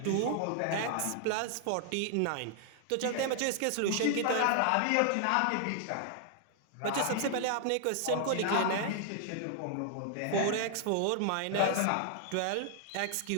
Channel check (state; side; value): different; both; correlation 0.00